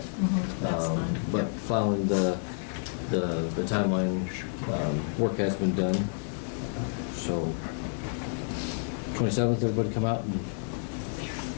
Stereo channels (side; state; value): right; silent; 58 dB below the other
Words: but following the timeline, work has been done. So 27th, everybody come out and